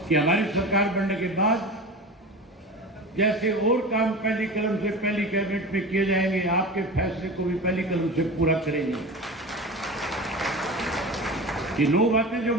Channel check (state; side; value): normal; both; correlation 0.31